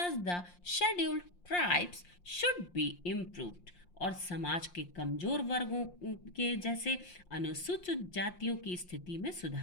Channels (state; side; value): late; right; 5.7 ms